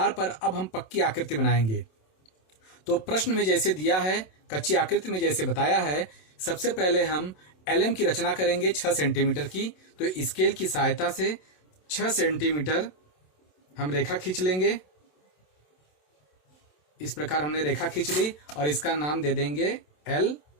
पर अब हम पक्की आकृति बनाएंगे। तो प्रश्न में जैसे दिया है, कच्ची आकृति में जैसे बताया है, सबसे पहले हम LM की रचना करेंगे 6 सेंटीमीटर की। तो स्केल की सहायता से 6 सेंटीमीटर हम रेखा खींच लेंगे। इस प्रकार हमने रेखा खींच ली और इसका नाम दे देंगे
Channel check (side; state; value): right; late; 27 ms